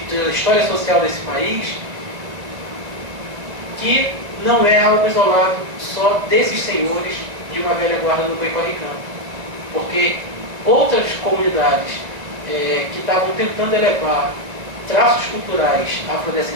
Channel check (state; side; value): late; left; 2.0 ms